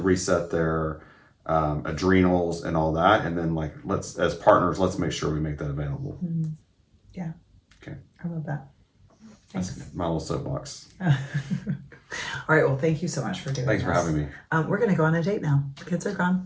their adrenals and all that. And then, like, as partners, let's make sure we make that available. Mm-hmm. Yeah. Okay. I love that. Thanks. That's my little soapbox. All right. Well, thank you so much for doing this. Thanks for having me. We're going to go on a date now. The kids are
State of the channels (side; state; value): both; identical; correlation 1.00